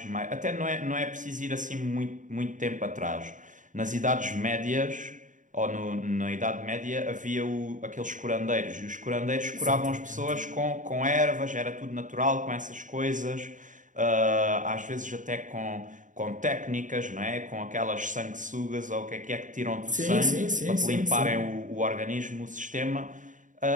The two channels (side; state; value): left; late; 0.37 ms